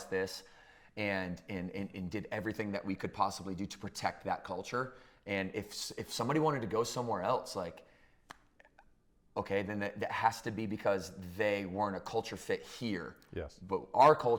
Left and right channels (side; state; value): both; identical; correlation 1.00